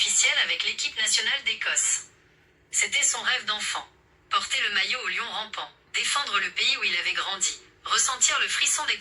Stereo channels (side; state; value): both; identical; correlation 1.00